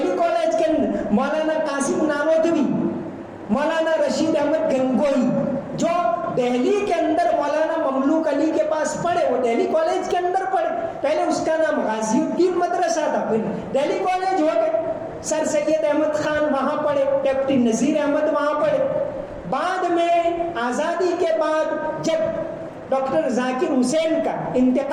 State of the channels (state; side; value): identical; both; correlation 1.00